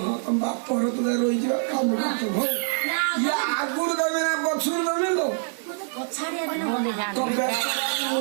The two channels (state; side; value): silent; left; digital silence